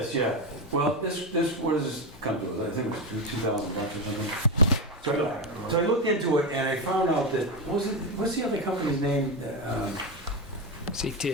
yeah. Well, this, what does this come to? I think it was $2,000 or something. So I looked into it and I found out that, what's the other company's name?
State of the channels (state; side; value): normal; both; correlation 0.12